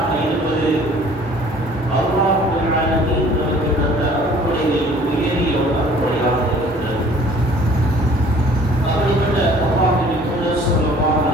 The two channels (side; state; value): both; normal; correlation 0.53